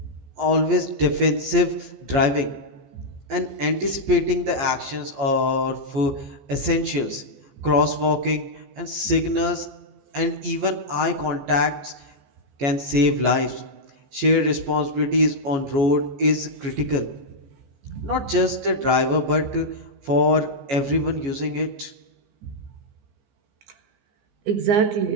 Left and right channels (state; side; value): late; left; 14 ms